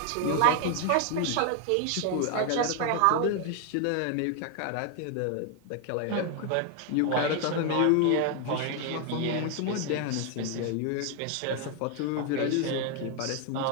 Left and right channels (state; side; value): different; both; correlation 0.01